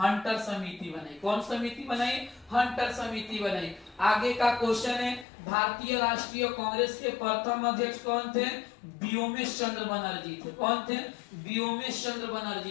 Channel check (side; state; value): right; drops out; at 5.2 s